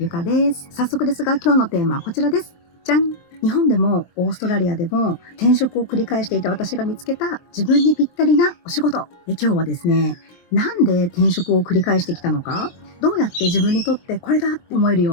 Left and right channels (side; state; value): right; late; 23 ms